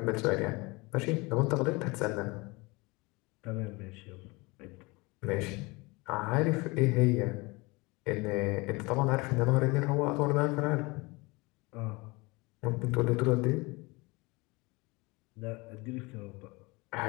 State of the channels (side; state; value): right; quieter; 25.1 dB